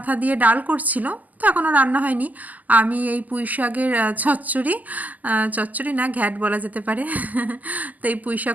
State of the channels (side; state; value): left; late; 0.080 ms